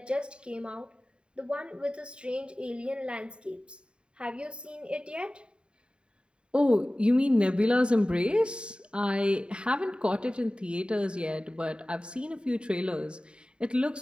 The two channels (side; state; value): left; late; 0.052 ms